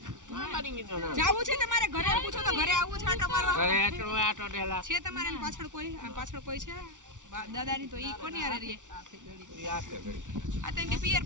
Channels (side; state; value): left; late; 0.87 ms